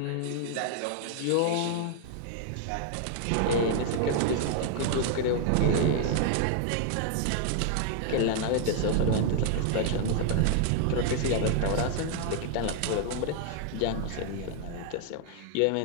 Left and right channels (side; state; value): both; different; correlation 0.00